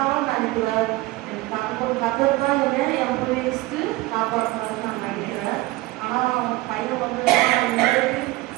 நினைக்கிறேன். கத்தர் தான் என் போய் லிஸ்ட்டு காப்பாற்றினாரு நான் நினைக்கிறேன். ஆனால் பையன் வந்து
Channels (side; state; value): left; quieter; 19.4 dB